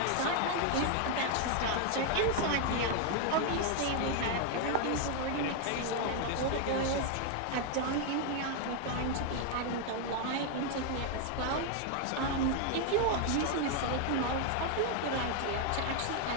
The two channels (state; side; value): different; both; correlation 0.01